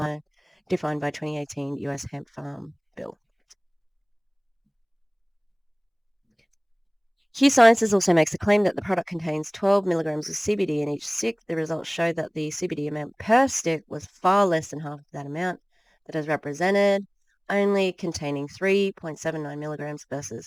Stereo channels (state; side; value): identical; both; correlation 1.00